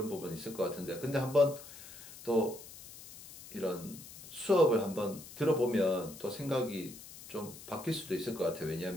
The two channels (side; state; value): left; noise; hiss, 16 dB below the sound